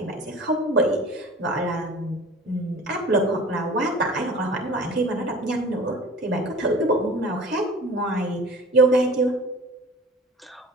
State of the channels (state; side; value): normal; both; correlation 0.42